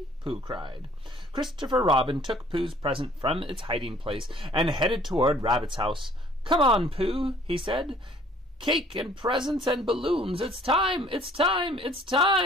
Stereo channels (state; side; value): normal; both; correlation 0.56